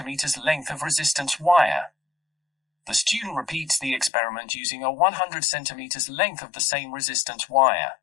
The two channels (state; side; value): drops out; right; at 4.1 s